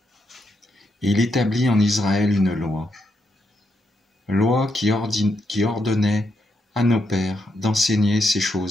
et il établit en Israël une loi qui ordonnait à nos pères d'enseigner ces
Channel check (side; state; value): both; normal; correlation 0.80